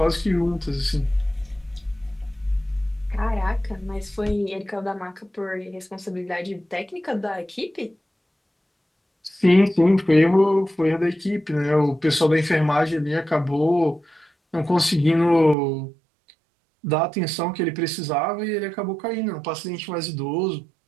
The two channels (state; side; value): drops out; left; at 15.6 s